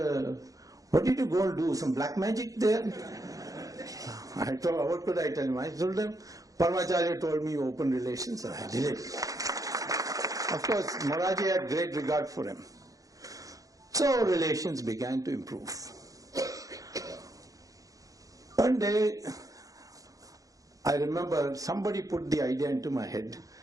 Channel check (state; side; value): late; left; 0.17 ms